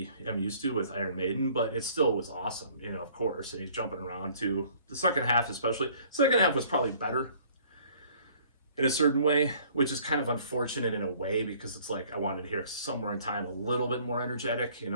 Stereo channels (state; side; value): inverted; both; correlation -0.56